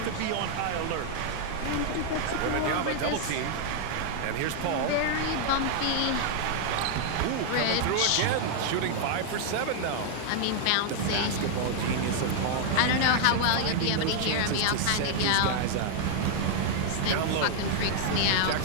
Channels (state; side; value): different; both; correlation 0.00